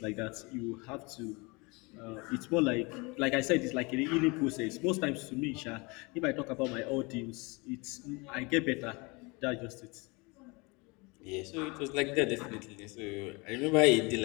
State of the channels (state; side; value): quieter; right; 27.5 dB